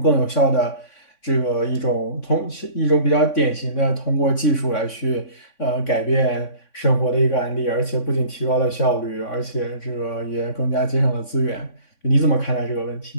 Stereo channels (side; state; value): right; late; 3.6 ms